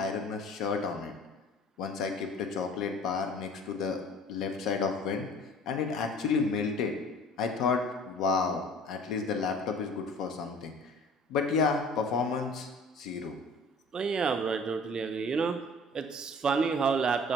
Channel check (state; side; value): normal; both; correlation 0.47